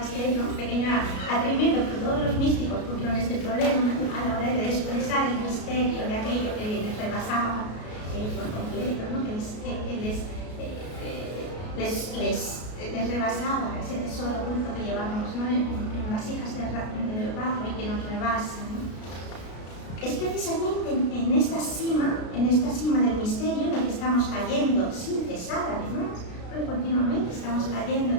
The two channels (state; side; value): late; right; 33 ms